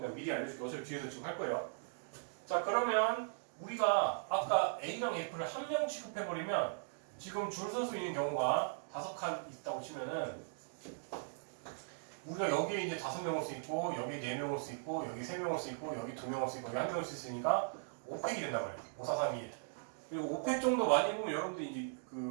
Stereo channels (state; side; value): silent; left; digital silence